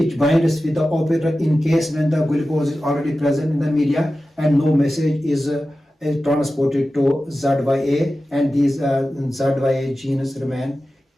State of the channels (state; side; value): normal; both; correlation 0.94